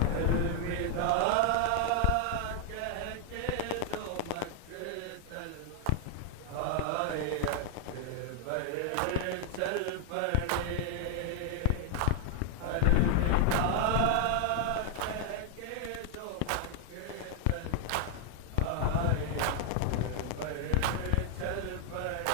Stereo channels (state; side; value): different; both; correlation 0.00